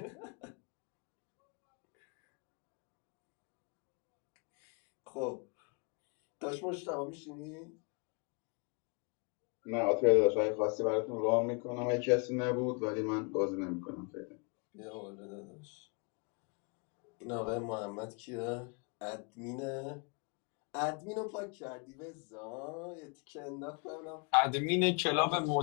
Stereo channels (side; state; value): right; quieter; 34.8 dB